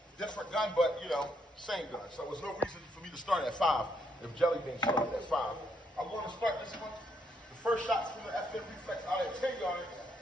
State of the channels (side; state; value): both; normal; correlation 0.74